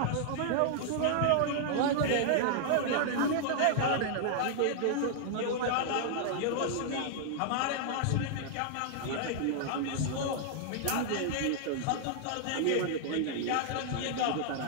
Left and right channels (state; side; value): different; both; correlation -0.01